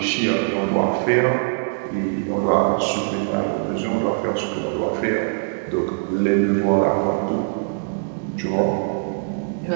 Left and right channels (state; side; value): silent; left; digital silence